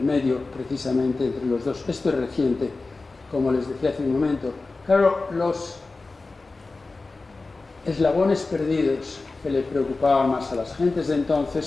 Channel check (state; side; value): quieter; right; 3.6 dB